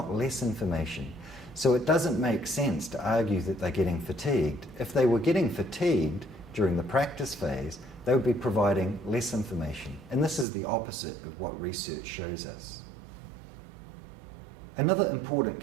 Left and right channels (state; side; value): drops out; left; at 10.5 s